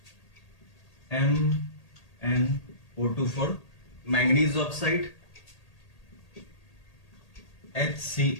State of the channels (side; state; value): right; late; 1.8 ms